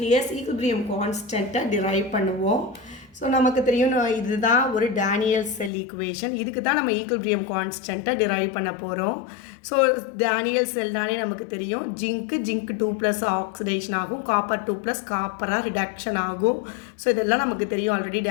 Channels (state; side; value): drops out; right; at 5.7 s